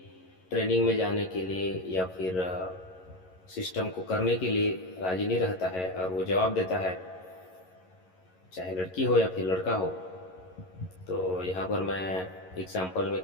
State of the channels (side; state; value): right; late; 11 ms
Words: ट्रेनिंग में जाने के लिए या फिर सिस्टम को करने के लिए राजी नहीं रहता है और वो जवाब देता है, चाहे लड़की हो या फिर लड़का हो। तो यहाँ पर मैं एग्जाम्पल में